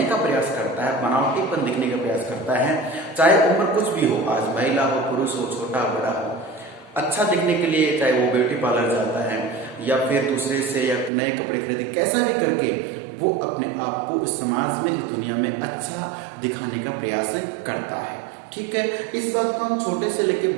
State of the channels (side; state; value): left; drops out; at 11.1 s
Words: का प्रयास करता है, बनावटीपन दिखने का प्रयास करता है, चाहे उम्र कुछ भी हो, आज महिला हो, पुरुष हो, छोटा बड़ा हो, अच्छा दिखने के लिए चाहे वो ब्यूटी पार्लर जाता है या फिर दूसरे से या नए कपड़े खरीदे, कैसा भी करके वो अपने आप को इस समाज में, इस दुनिया में अच्छा दिखाने का प्रयास करता है। ठीक है, इस बात को हम छोटे से लेकर